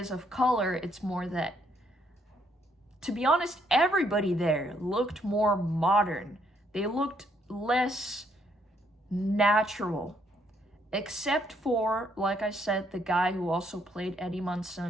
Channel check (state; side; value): normal; both; correlation 0.71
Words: of color, it's more that, to be honest, everybody there looked more modern. They looked less natural. Except for, like I said, the guy who also played Eddie